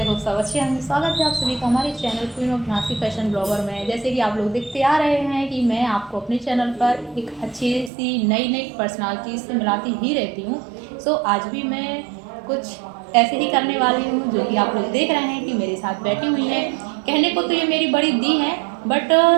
होप सब अच्छे हैं। स्वागत है आप सभी का हमारे channel queen of Nasi fashion blogger में। जैसे कि आप लोग देखते आ रहे हैं कि मैं आपको अपने चैनल पर एक अच्छी सी नई नई पर्सनालिटी से मिलाती ही रहती हूँ। सो आज भी मैं कुछ ऐसे ही करने वाली हूँ जो कि आप लोग देख रहे हैं कि मेरे साथ बैठी हुई है। कहने को तो ये मेरी बड़ी दी है, बट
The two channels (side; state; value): left; drops out; at 7.9 s